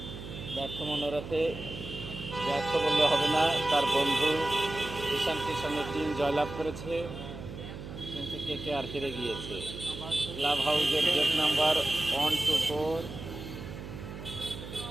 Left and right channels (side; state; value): right; noise; hum, 10 dB below the sound